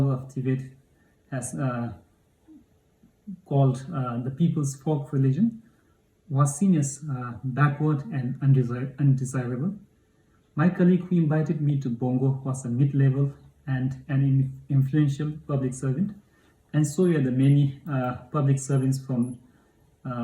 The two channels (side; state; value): both; identical; correlation 1.00